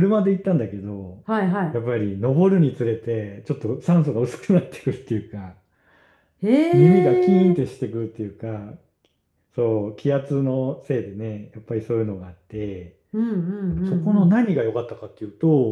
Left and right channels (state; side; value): identical; both; correlation 1.00